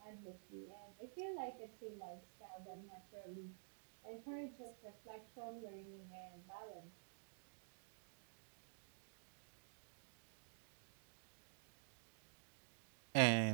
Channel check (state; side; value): silent; left; digital silence